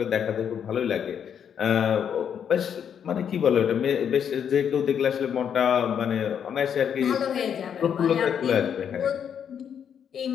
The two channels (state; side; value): quieter; right; 8.2 dB